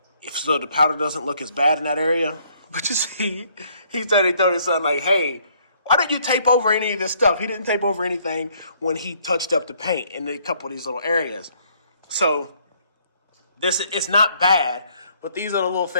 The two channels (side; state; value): both; inverted; correlation -0.65